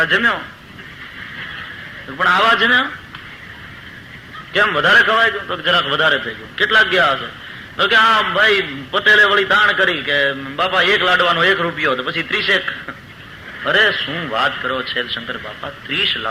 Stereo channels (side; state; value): both; identical; correlation 1.00